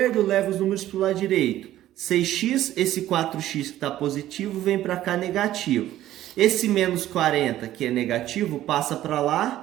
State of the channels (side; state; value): left; quieter; 13.6 dB